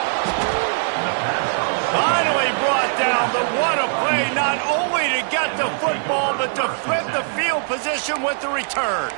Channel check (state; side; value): silent; left; digital silence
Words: Finally brought down. But what a play, not only to get the football, but to flip the field position with the return.